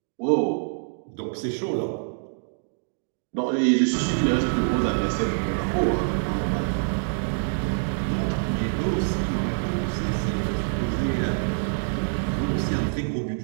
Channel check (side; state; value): left; silent; digital silence